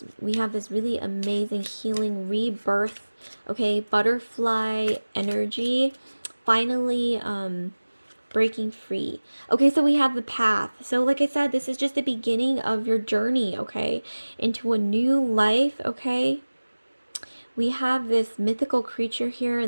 We have this really amazing healing rebirth, okay, butterfly energy, finally breaking free. Okay, so we have the path. So like I said, this is just the beginning of your journey, okay, into a new life, okay? We have this mythical creature here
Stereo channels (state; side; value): inverted; both; correlation -1.00